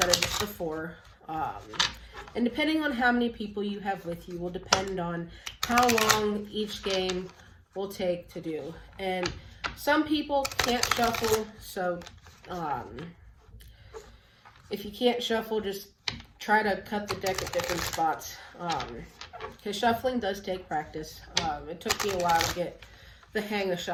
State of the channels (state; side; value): identical; both; correlation 1.00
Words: of just the 4. And depending on how many people you have with you will depend on how long each game will take to do. And some people can't shuffle, so if you can't shuffle, just try to cut the deck at different spots. Because shuffling does take practice. It took me a while to get the hang of